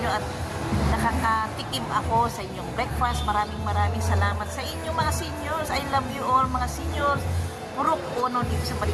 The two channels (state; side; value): identical; both; correlation 1.00